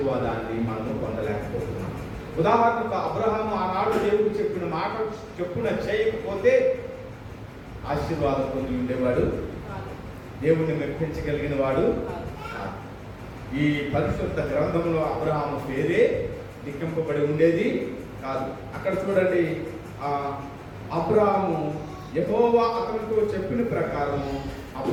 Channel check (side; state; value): both; identical; correlation 1.00